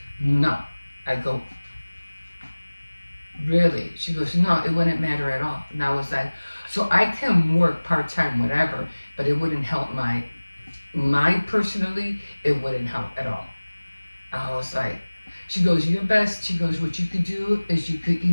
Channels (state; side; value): inverted; both; correlation -1.00